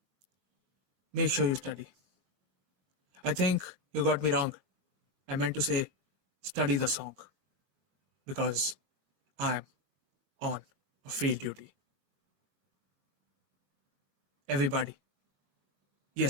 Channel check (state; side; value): late; left; 21 ms